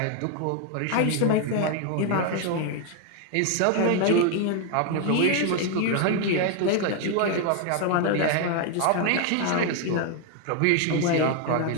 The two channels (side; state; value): both; different; correlation 0.00